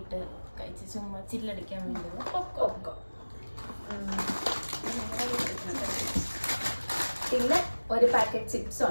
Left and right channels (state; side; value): inverted; both; correlation -1.00